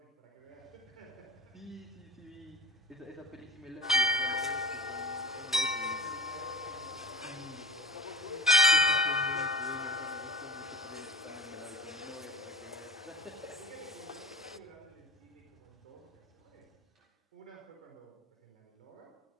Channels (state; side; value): normal; both; correlation 0.32